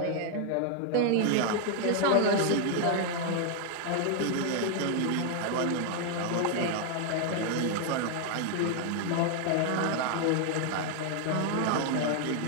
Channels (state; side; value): different; both; correlation 0.00